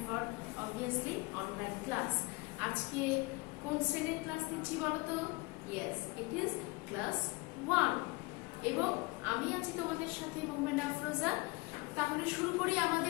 for obviously online class. আজকে কোন শ্রেণীর ক্লাস নিচ্ছি বলো তো? ইয়েস, ইট ইজ ক্লাস 1 এবং আমি আছি তোমাদের সাথে মোহাম্মদ আফরোজা। তাহলে শুরু করি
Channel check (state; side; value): quieter; right; 25.1 dB